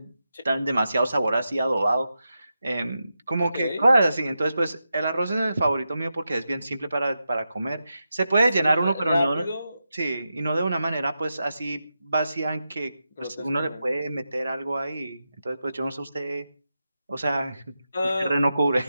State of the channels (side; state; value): both; inverted; correlation -0.89